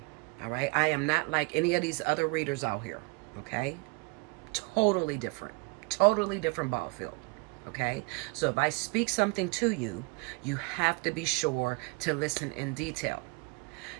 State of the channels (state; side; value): quieter; left; 29.0 dB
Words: All right, I am not like any of these other readers out here. Okay, totally different ball field. Okay, so if I speak something to you, you have to be sure to listen in detail.